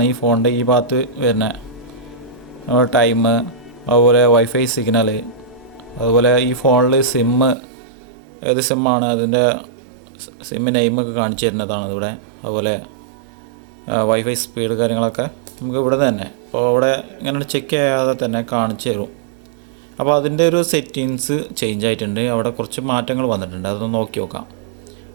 ഈ ഫോണിൻ്റെ ഈ ഭാഗത്ത് വരുന്ന ടൈം, അതുപോലെ വൈഫൈ സിഗ്നൽ, അതുപോലെ ഈ ഫോണിൽ ഏത് സിമ്മാണ് അതിൻ്റെ സിമ്മ് നെയിമൊക്കെ കാണിച്ചു തരുന്നതാണ് ഇവിടെ. അതുപോലെ വൈഫൈ സ്പീഡ് കാര്യങ്ങളൊക്കെ നമുക്ക് ഇവിടെ തന്നെ അപ്പോൾ അവിടെ ഇങ്ങനെ ചെക്ക് ചെയ്യാതെ തന്നെ കാണിച്ചു തരും. അപ്പോൾ അതിൻ്റെ ഒരു സെറ്റിങ്സ് ചേഞ്ച് ആയിട്ടുണ്ട്. അവിടെ കുറച്ച് മാറ്റങ്ങൾ വന്നിട്ടുണ്ട്. അതൊന്ന് നോക്കി നോക്കാം.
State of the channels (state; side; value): drops out; left; at 7.6 s